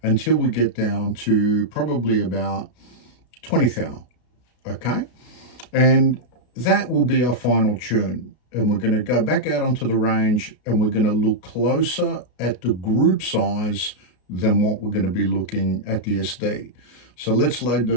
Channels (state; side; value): late; right; 33 ms